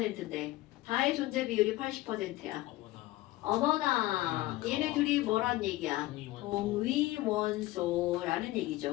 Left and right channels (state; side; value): quieter; right; 17.6 dB